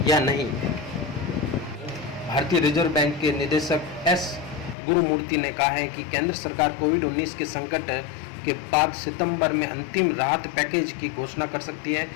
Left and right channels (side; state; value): right; drops out; at 4.8 s